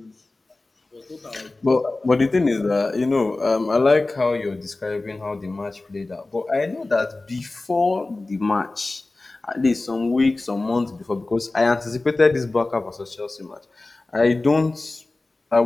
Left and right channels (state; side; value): quieter; right; 3.1 dB